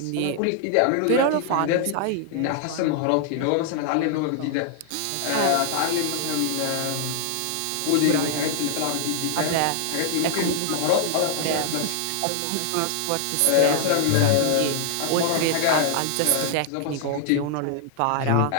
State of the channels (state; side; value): different; both; correlation 0.00